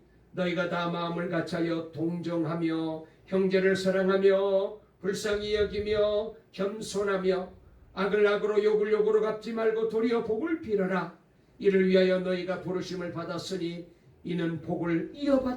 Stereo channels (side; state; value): both; identical; correlation 1.00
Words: 너희가 다 마음을 같이하여 동정하며 형제를 사랑하며 불쌍히 여기며 겸손하며 악을 악으로 욕을 욕으로 갚지 말고 도리어 복을 빌어라. 이를 위하여 너희가 부르심을 받았으니 이는 복을